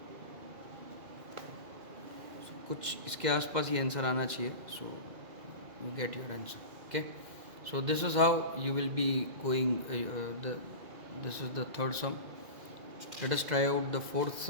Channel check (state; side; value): late; left; 2.4 ms